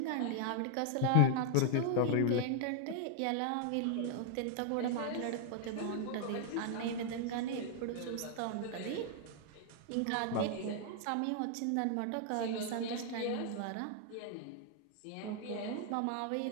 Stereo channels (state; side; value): different; both; correlation 0.00